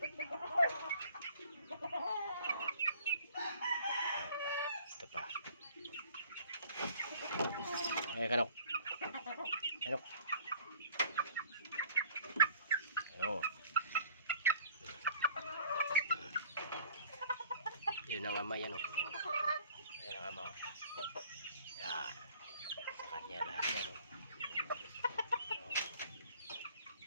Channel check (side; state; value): both; inverted; correlation -0.53